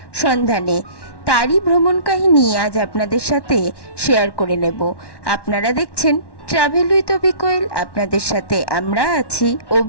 সন্ধানে। তারই ভ্রমণ কাহিনী আজ আপনাদের সাথে শেয়ার করে নেব। আপনারা দেখছেন ট্রাভেল উইথ অভি কোয়েল। আপনাদের সাথে আমরা আছি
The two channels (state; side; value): late; right; 1.1 ms